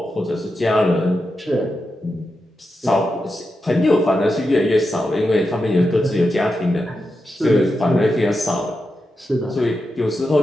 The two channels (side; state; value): both; normal; correlation 0.88